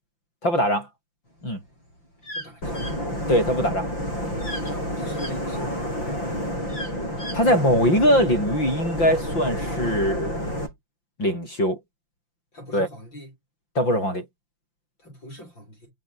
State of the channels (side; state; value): right; late; 5.8 ms